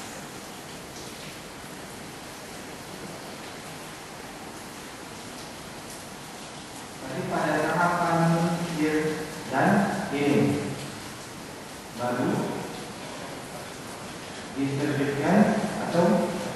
Tapi pada tahapan year dan ini baru diterbitkan atau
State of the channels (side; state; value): both; identical; correlation 1.00